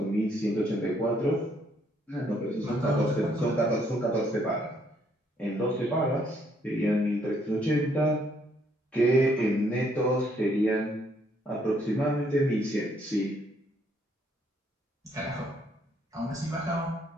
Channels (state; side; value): normal; both; correlation 0.69